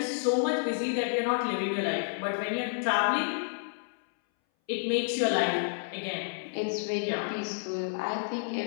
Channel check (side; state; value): right; silent; 58 dB below the other